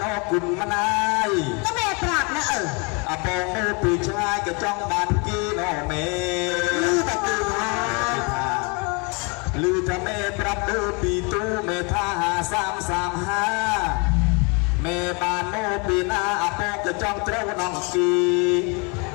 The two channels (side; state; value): right; quieter; 31.7 dB